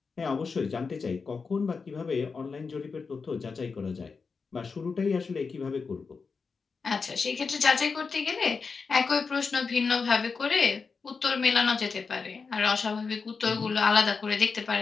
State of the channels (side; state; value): right; quieter; 5.0 dB